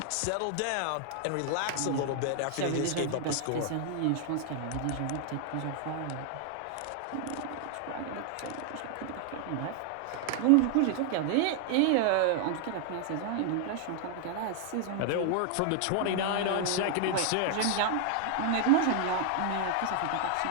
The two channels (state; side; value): different; both; correlation 0.00